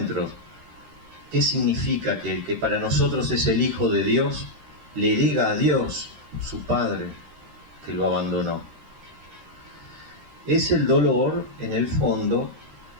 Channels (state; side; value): late; left; 13 ms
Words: ¿Qué significa que el que para nosotros es el Hijo de Dios le diga a Dios, su Padre, que lo abandonó? Es el dolor, en el fondo,